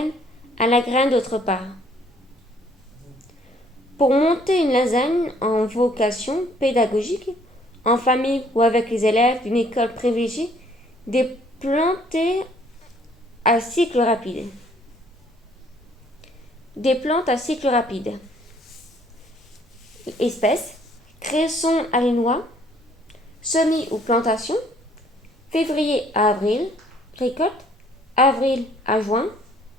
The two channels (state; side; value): normal; both; correlation 0.61